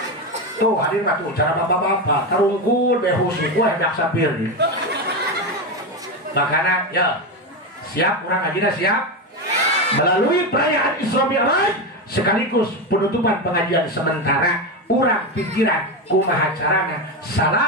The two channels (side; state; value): both; normal; correlation 0.14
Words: Tuh hadir mah tuh cara bapak-bapak tarungkul behus ku hendak sapir. Makana ya siap urang ngajina siap. Melalui perayaan Isra Mi'raj sekaligus penutupan pengajian sementara urang pikiran kumaha carana